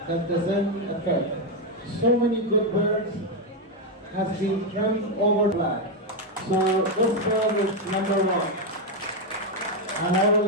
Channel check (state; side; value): normal; both; correlation 0.04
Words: that doesn't affect. So many good birds has been trimmed over black. So this bird is number one. And I will